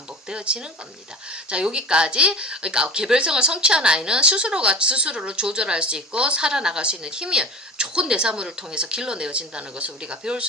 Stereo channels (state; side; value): normal; both; correlation 0.34